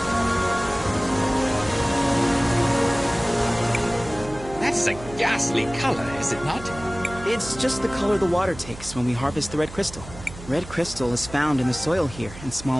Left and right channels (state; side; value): noise; right; hum, 14 dB below the sound